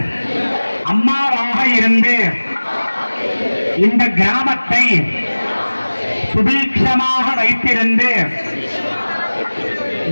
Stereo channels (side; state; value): both; inverted; correlation -1.00